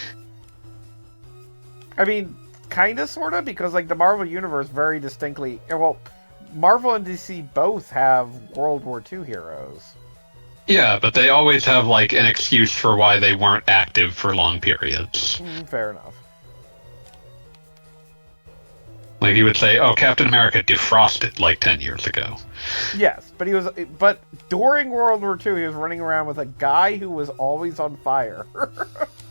I mean, kinda, sorta, because, like, the Marvel Universe very distinctly... Well, Marvel and DC both have World War II heroes. Yeah, but they always have, like, an excuse for why they weren't active for long periods. Fair enough. Like he would say, "Oh, Captain America defrosted like 10 years ago." Yes, but during World War II, he was running around with a guy who was always on fire.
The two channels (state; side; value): inverted; both; correlation -1.00